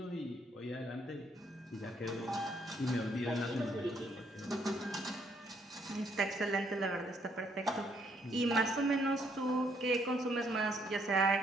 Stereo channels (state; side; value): normal; both; correlation 0.70